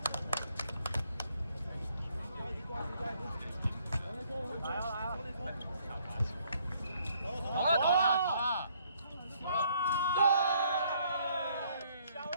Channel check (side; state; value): both; inverted; correlation -0.66